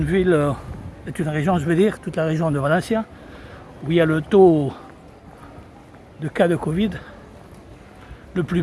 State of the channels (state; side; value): identical; both; correlation 1.00